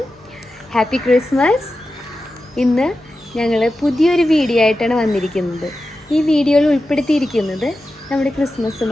Happy Christmas. ഇന്ന് ഞങ്ങൾ പുതിയൊരു വീഡിയോ ആയിട്ടാണ് വന്നിരിക്കുന്നത്. ഈ വീഡിയോയിൽ ഉൾപ്പെടുത്തിയിരിക്കുന്നത് നമ്മുടെ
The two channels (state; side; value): normal; both; correlation 0.92